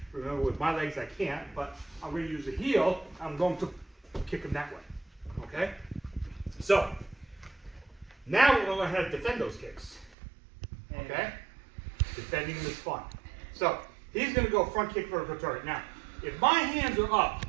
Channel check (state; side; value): drops out; left; at 10.2 s